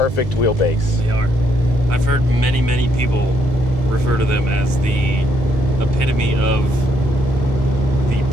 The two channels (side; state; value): both; normal; correlation 0.73